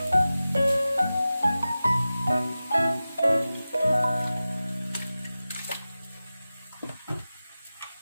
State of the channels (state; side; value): inverted; both; correlation -0.95